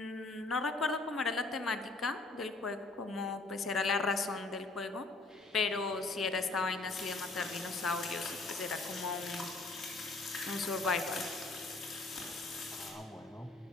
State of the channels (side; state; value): right; quieter; 3.4 dB